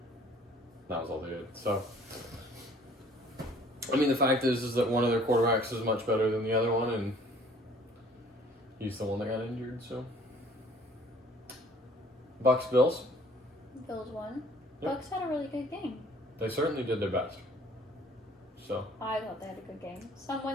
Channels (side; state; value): both; normal; correlation 0.55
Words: That was all they did. So, I mean, the fact is that one of their quarterbacks is much better than the other one, and he's the one that got injured, so. Bucks, Bills. Bills won. Yep. Bucks had a really good game. They certainly did their best. So. I thought they had a good game.